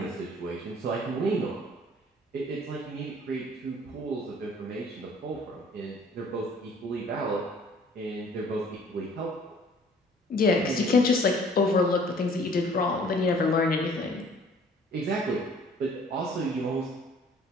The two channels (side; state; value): both; normal; correlation 0.54